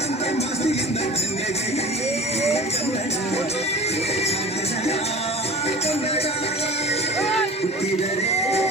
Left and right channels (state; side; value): normal; both; correlation 0.38